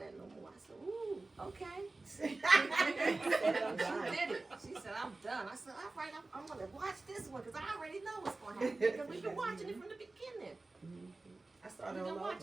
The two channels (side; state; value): left; quieter; 3.3 dB